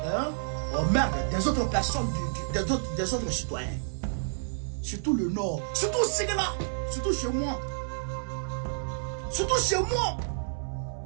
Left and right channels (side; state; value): left; silent; 58 dB below the other